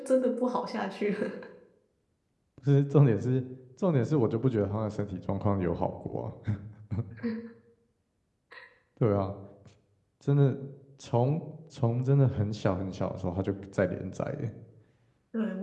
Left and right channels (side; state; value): both; identical; correlation 1.00